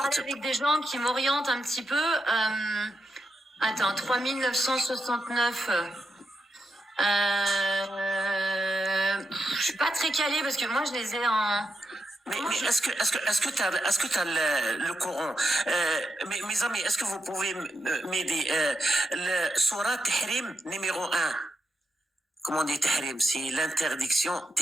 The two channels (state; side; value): normal; both; correlation 0.86